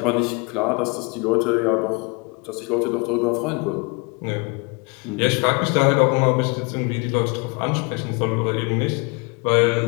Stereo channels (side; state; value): right; quieter; 30.5 dB